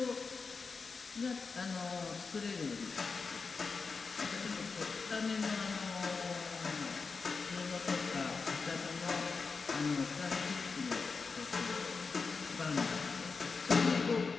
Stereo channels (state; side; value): quieter; right; 4.7 dB